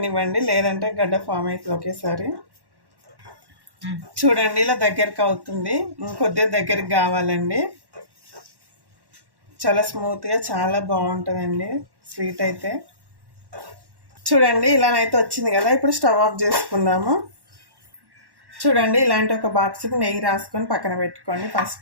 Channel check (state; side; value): late; left; 1.1 ms